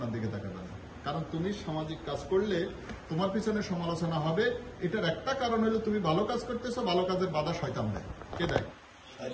দিকে তাকাবে না। কারণ তুমি সামাজিক কাজ করলে তোমার পিছনে সমালোচনা হবে। এটার একটা কারণ হলো তুমি ভালো কাজ করতেছো, ভালো কাজের বাধা শয়তান দেয়। কে দেয়?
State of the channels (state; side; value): identical; both; correlation 1.00